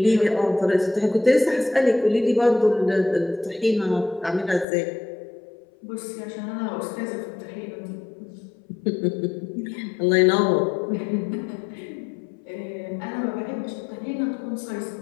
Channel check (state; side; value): drops out; right; at 4.7 s